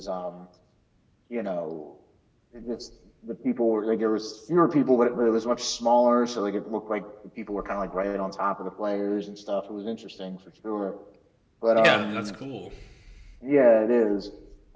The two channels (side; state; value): both; identical; correlation 1.00